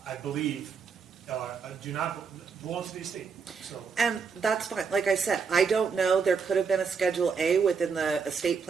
I believe, do not belong to the estate, so. And that's fine. Like I said, I don't know. There could have been a Schedule A within the estate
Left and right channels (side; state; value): left; quieter; 5.7 dB